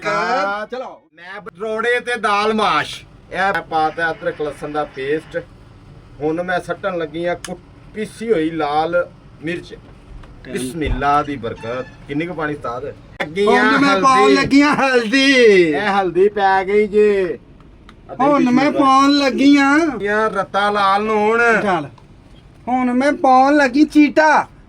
ਚਲੋ ਮੈਂ ਰੋੜੇ ਤੇ ਦਾਲ ਮਾਸ਼ ਇਹ ਪਾਤਾ ਅਦਰਕ ਲਸਣ ਦਾ ਪੇਸਟ ਹੁਣ ਮੈਂ ਸੱਟਣ ਲੱਗੀ ਆ ਪੀਸੀ ਹੋਈ ਲਾਲ ਮਿਰਚ ਬਿਸਮਿਲ੍ਲਾ ਦੀ ਬਰਕਤ ਕਿੰਨੀ ਕੁ ਪਾਣੀ ਸਤਾਦ ਹੁਣ ਮੈਂ ਪਾਉਣ ਲੱਗੀਆਂ ਹਲਦੀ ਇਹ ਹਲਦੀ ਪੈ ਗਈ ਜੇ ਹੁਣ ਮੈਂ ਪਾਉਣ ਲੱਗੀਆਂ ਯਾਰ ਰੱਤਾ ਲਾਲ ਨੂਣ ਚੱਲ ਹੁਣ ਮੈਂ ਪਾਉਣ ਲੱਗੀ ਚੀਟਾ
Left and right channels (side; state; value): both; identical; correlation 1.00